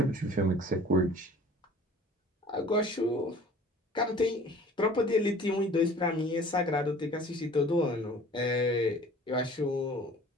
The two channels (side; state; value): both; normal; correlation 0.48